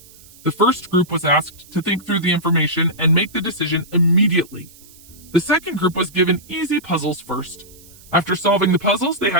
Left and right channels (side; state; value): right; noise; hiss, 23 dB below the sound